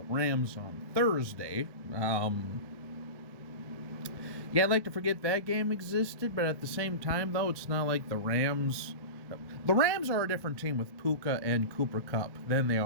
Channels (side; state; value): left; late; 1.1 ms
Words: Rams on Thursday, yeah, I'd like to forget that game existed, but at the same time, though, it's not like the Rams are a different team with Puka and Cooper Kupp than they